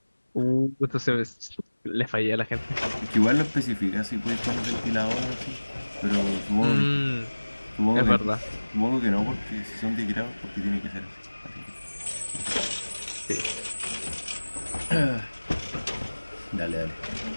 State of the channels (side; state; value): both; inverted; correlation -1.00